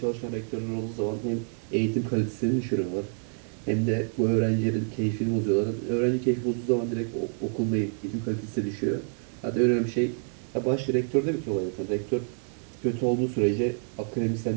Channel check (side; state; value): left; silent; 59 dB below the other